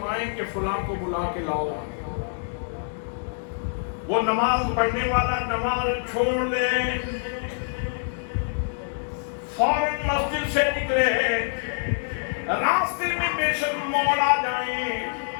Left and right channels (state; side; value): silent; right; digital silence